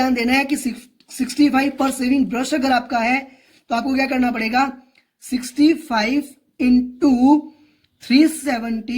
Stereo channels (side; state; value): both; identical; correlation 1.00